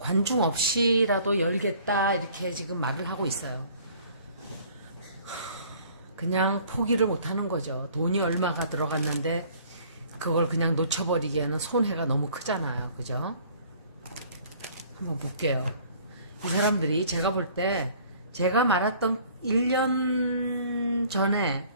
없이라도 열겠다 이렇게 지금 말을 하고 있어요. 그냥 포기를 못하는 거죠. 돈이 얼마가 들어갔는데 그걸 그냥 놓쳐버리기에는 손해가 너무 크잖아요. 그죠? 한번 볼게요. 이 사람들이 제가 볼 때 제가 말했던 1년 전에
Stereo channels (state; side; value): inverted; both; correlation -0.54